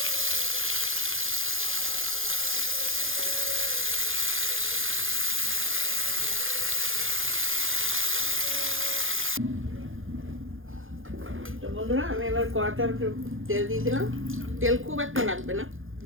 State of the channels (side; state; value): left; late; 0.59 ms